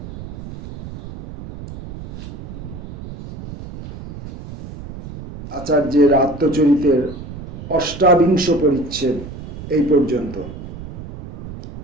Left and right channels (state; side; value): noise; right; rumble, 12 dB below the sound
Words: আচার্যের আত্মচরিতের ৮বিংশ পরিচ্ছেদ এই পর্যন্ত।